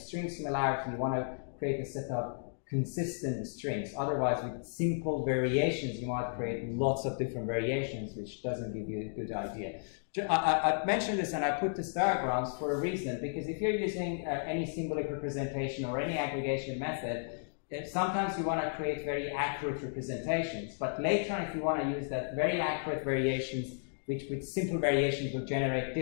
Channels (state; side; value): silent; right; digital silence